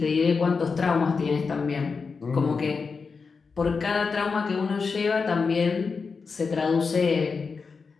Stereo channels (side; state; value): right; quieter; 5.0 dB